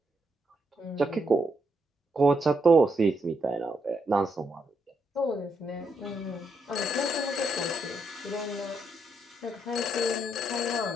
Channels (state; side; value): normal; both; correlation 0.79